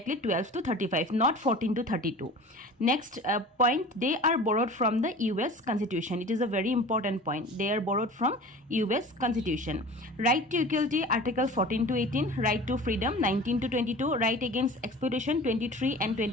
12 to 35, not 14 to 32. Next point, they are borrowed from the US Constitution. It is a very important point. They are borrowed from US Constitution. Right to equality, article 14 to 18. Right to freedom, 19 to 22. Right against exploitation, 23 and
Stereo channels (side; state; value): both; normal; correlation 0.39